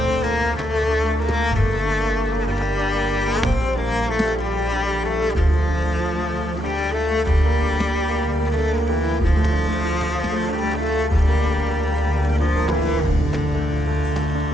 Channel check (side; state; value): both; normal; correlation 0.78